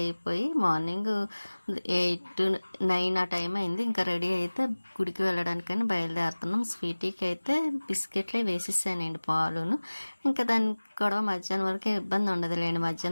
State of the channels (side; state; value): both; inverted; correlation -1.00